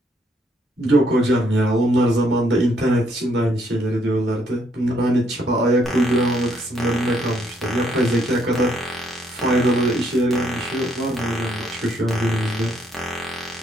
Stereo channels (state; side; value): normal; both; correlation 0.71